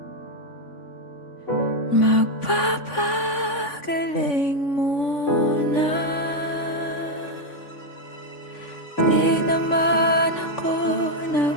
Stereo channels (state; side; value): late; right; 3.5 ms